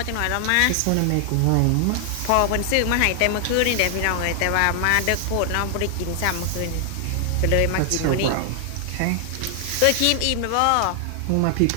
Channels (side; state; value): both; different; correlation 0.00